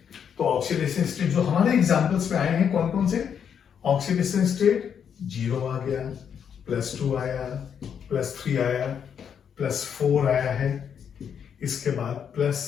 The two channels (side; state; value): right; quieter; 7.8 dB